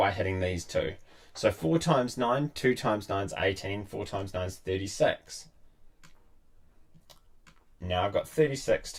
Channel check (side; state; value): both; identical; correlation 1.00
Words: hitting these two. So 4 times 9, 2 times 9 is 18, 4 times 9 is 36. Now I've got 36